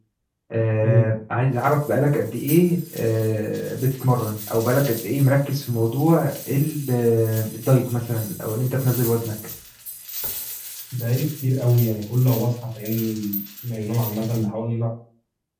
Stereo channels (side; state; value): both; identical; correlation 1.00